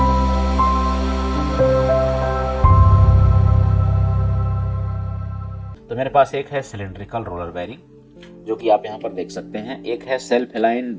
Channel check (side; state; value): both; identical; correlation 1.00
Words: तो मेरे पास एक है सिलेंड्रिकल रोलर बेयरिंग जो कि आप यहाँ पर देख सकते हैं, एक है सेल्फ अलाइन